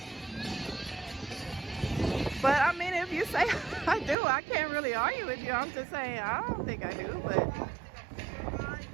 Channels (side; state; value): left; drops out; at 4.2 s